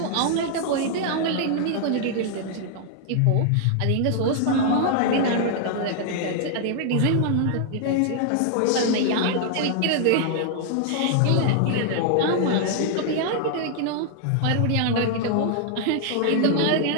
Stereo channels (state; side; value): different; both; correlation 0.00